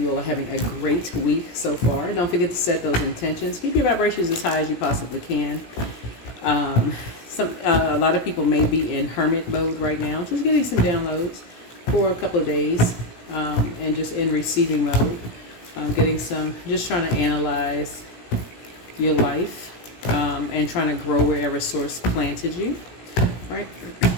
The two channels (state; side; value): late; right; 17 ms